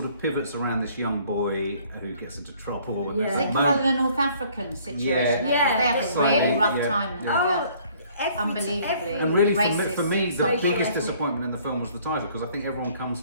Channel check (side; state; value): both; inverted; correlation -0.58